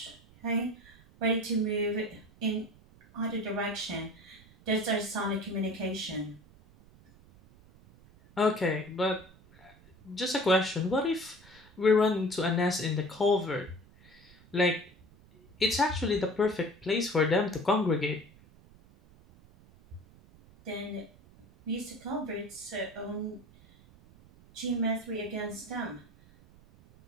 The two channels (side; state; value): right; noise; rumble, 25 dB below the sound